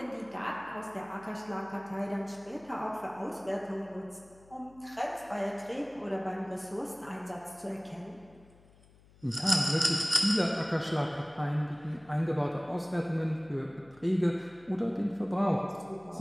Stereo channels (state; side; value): noise; left; hum, 26 dB below the sound